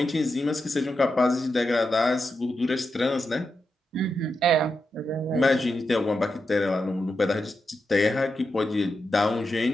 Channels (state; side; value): normal; both; correlation 0.87